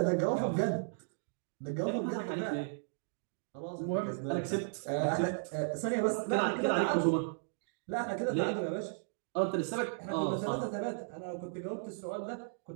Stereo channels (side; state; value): left; silent; digital silence